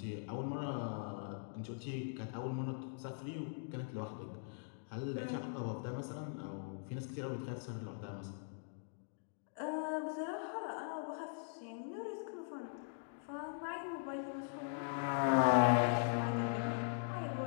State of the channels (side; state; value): right; silent; digital silence